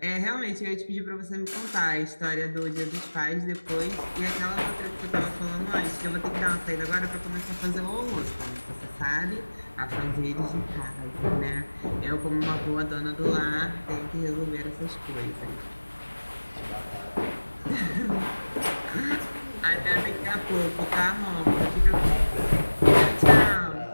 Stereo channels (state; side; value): inverted; both; correlation -1.00